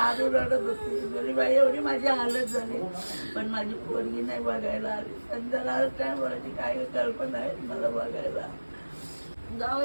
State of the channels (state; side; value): inverted; both; correlation -1.00